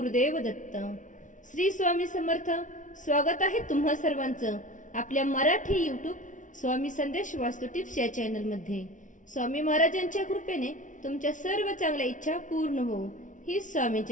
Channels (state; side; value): late; right; 0.37 ms